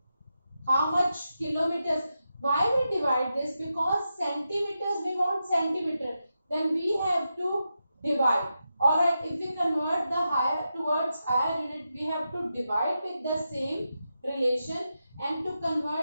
how much kilometers? Why we divide this? Because centimeters, we want centimeter. Then we have to divide. Alright, if we convert the higher towards higher unit, we have to divide with the same relation, and to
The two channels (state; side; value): inverted; both; correlation -0.88